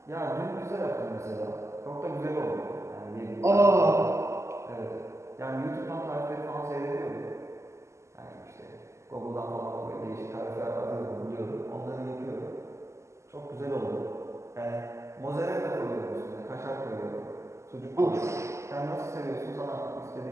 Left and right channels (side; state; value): left; late; 0.13 ms